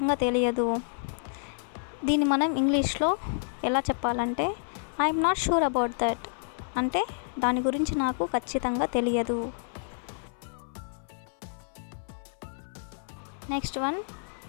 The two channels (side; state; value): right; silent; 58 dB below the other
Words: తెలియదు. దీన్ని మనం ఇంగ్లీష్లో ఎలా చెప్పాలంటే I'm not sure about that, అంటే దాని గురించి నాకు ఖచ్చితంగా తెలియదు. నెక్స్ట్ వన్